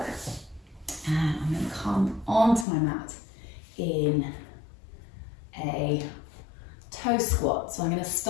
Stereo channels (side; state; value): right; drops out; at 2.7 s